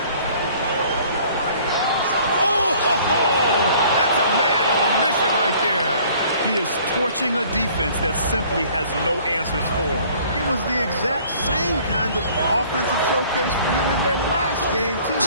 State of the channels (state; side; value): inverted; both; correlation -0.54